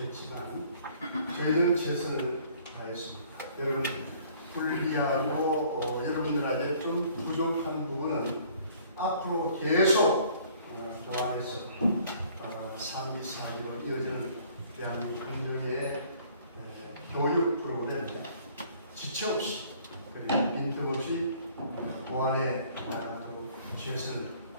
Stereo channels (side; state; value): both; inverted; correlation -0.56